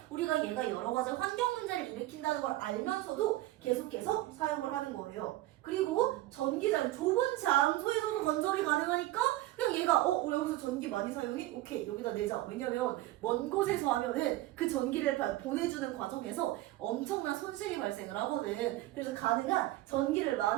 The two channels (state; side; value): quieter; left; 16.6 dB